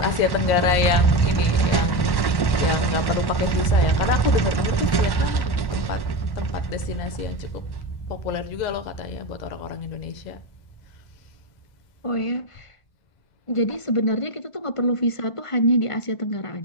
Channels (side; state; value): right; late; 1.1 ms